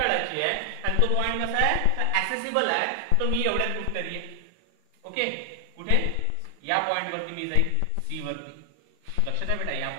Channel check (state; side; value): different; both; correlation 0.00